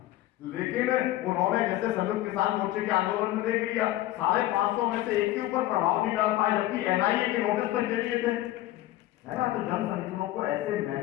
लेकिन उन्होंने जैसे संयुक्त किसान मोर्चे के आंदोलन में देख लिया, 550 में से एक के ऊपर प्रभाव नहीं डाल पाए, जबकि एनआईए के नोटिस तक दे दिए थे, है ना। तो जन संगठनों को ऐसे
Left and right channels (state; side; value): quieter; right; 15.4 dB